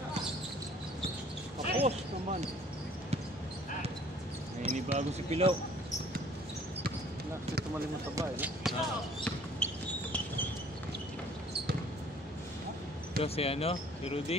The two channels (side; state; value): both; normal; correlation 0.55